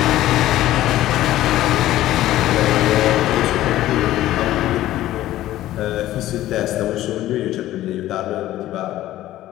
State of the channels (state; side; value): quieter; right; 14.5 dB